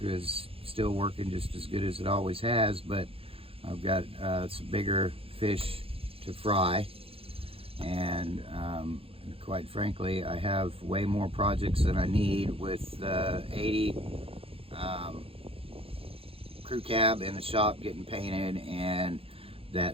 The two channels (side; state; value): left; late; 0.27 ms